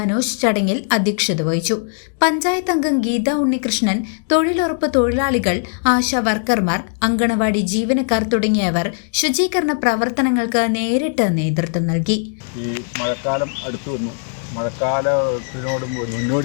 ചടങ്ങിൽ അധ്യക്ഷത വഹിച്ചു. പഞ്ചായത്ത് അംഗം ഗീത ഉണ്ണികൃഷ്ണൻ, തൊഴിലുറപ്പ് തൊഴിലാളികൾ, ആശാ വർക്കർമാർ, അങ്കണവാടി ജീവനക്കാർ തുടങ്ങിയവർ ശുചീകരണ പ്രവർത്തനങ്ങൾക്ക് നേരിട്ട് നേതൃത്വം നൽകി. ഈ മഴക്കാലം അടുത്തു വന്നു. മഴക്കാലത്തിനോട്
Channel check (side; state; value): right; silent; 63 dB below the other